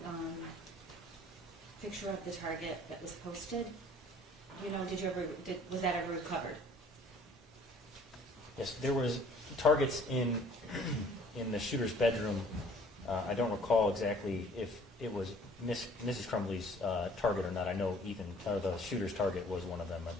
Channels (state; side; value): normal; both; correlation 0.54